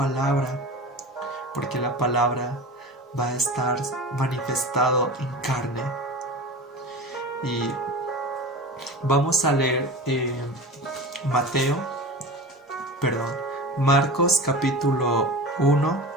porque la palabra va a estar manifestado en carne. Y vamos a leer Marcos capítulo 1,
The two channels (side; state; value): both; normal; correlation 0.32